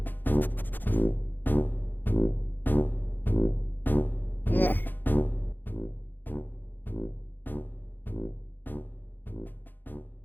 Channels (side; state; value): right; late; 0.089 ms